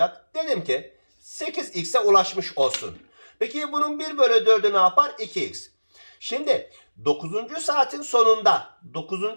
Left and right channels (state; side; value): inverted; both; correlation -1.00